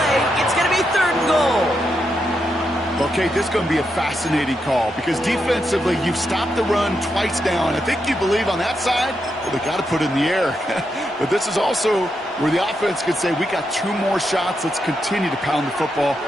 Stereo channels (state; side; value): normal; both; correlation 0.83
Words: It's going to be 3rd and goal. Okay, this is going to be a fascinating call because defensively, you've stopped the run twice down. I think you believe on that side, well, they got to put it in the air. But this is also where the offense could say, we got 2 more shots. Let's continue to pound the football.